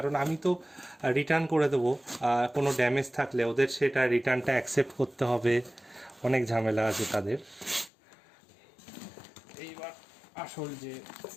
আমি তো রিটার্ন করে দেবো। কোনো ড্যামেজ থাকলে ওদের সেটা রিটার্নটা অ্যাকসেপ্ট করতে হবে, অনেক ঝামেলা আছে তাদের। এইবার আসল যে,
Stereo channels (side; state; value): right; drops out; at 7.9 s